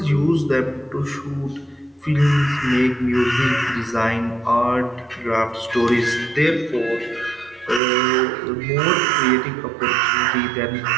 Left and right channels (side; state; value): left; drops out; at 7.8 s